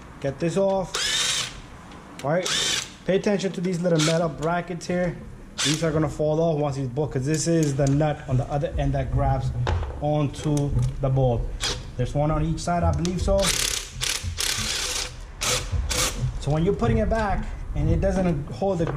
get this off. All right, pay attention to these little metal brackets here. These are gonna fall off once these bolt, because this is the nut on the other end that grabs onto the bolt. There's one on each side, I believe so. So when you're putting it back and it doesn't hold the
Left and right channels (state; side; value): identical; both; correlation 1.00